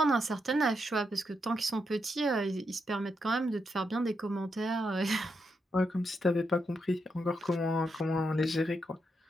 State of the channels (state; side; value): normal; both; correlation 0.82